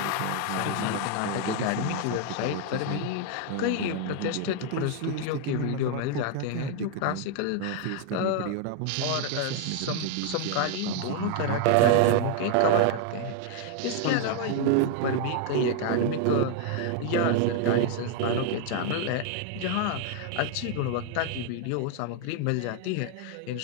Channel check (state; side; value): different; both; correlation 0.00